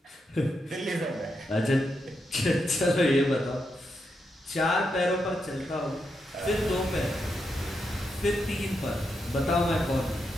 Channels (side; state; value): both; normal; correlation 0.84